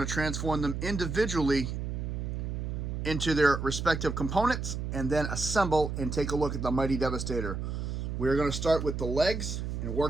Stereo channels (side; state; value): right; noise; hum, 4 dB below the sound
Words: to transform them individually into their respective components and then assemble and take a look at the Mighty Devastator. We're going to start with the legs and